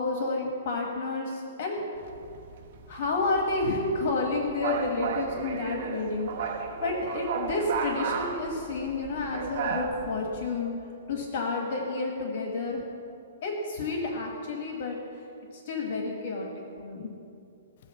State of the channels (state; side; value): inverted; both; correlation -0.41